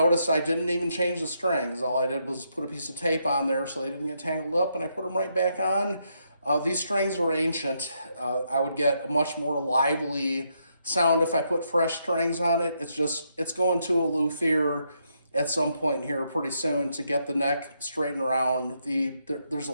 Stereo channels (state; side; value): inverted; both; correlation -0.78